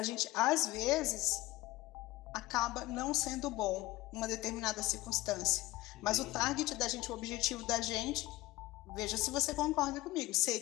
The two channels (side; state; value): right; quieter; 18.2 dB